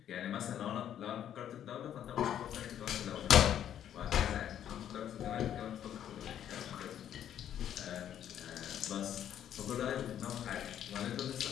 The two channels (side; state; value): right; quieter; 10.2 dB